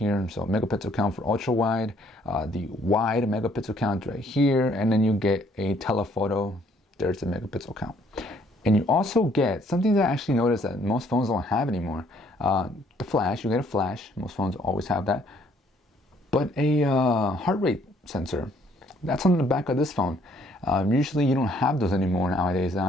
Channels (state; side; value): normal; both; correlation 0.63